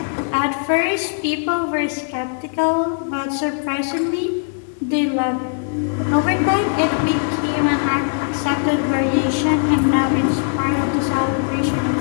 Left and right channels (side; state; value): right; silent; 66 dB below the other